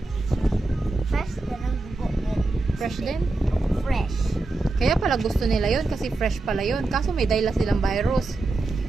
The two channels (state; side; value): quieter; left; 3.2 dB